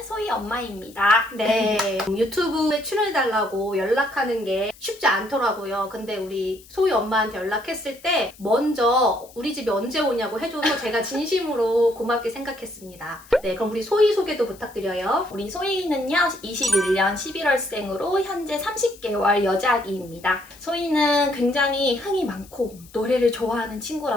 소희 엄마입니다. 네. 유튜브에 출연해달라고 연락하는 게 쉽지 않더라고요. 근데 우리 소희 엄마한테 연락했을 때 먼저 우리 집에 언제 오냐고 해줘서 제가 진심으로 고맙게 생각했습니다. 네, 그럼 우리 소희 소개도 부탁드려요. 우리 소희는요, 21년 11월생으로 현재 30개월 여자아기입니다. 소희는 굉장히 흥이 많고 노래를 좋아하는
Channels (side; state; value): left; noise; hiss, 23 dB below the sound